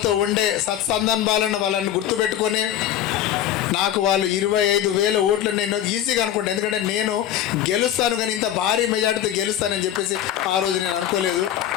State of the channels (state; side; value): quieter; right; 11.3 dB